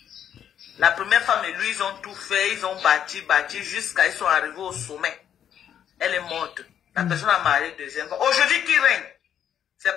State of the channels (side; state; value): right; quieter; 9.3 dB